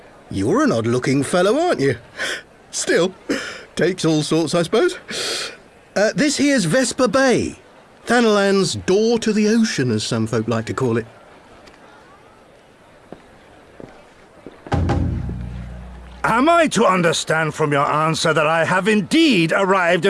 You're an odd-looking fellow, aren't you? Still, takes all sorts, I suppose. This here's Vesper Bay. Thanalan's door to the ocean, as some folk like to call it. Am I to understand from your answer that I have indeed arrived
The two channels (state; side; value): identical; both; correlation 1.00